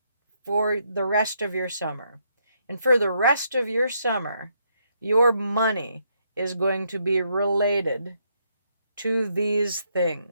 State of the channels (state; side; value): inverted; both; correlation -0.75